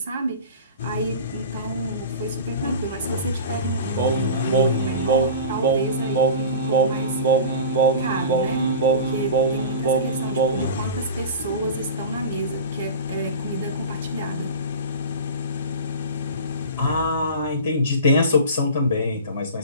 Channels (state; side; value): inverted; both; correlation -0.34